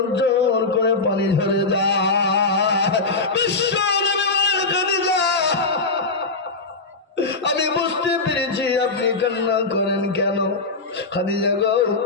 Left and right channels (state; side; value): quieter; right; 3.7 dB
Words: জল করে পানি ঝরে যায়। বিশ্ব নবী বলেন খাদিজা আমি বুঝতে পেরেছি আপনি কান্না করেন কেন। খাদিজা গো